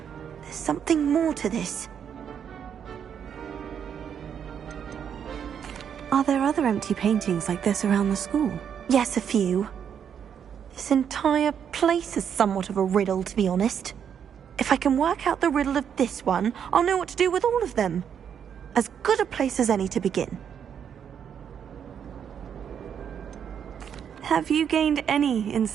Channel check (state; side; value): quieter; left; 8.1 dB